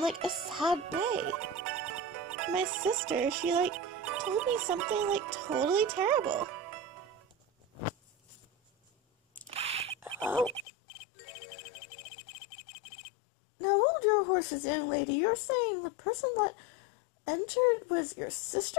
a sad way. My sister, she told me something totally terrible. Oh. Now hold your horses, young lady. You're saying the person that entered was your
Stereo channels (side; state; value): right; drops out; at 10.7 s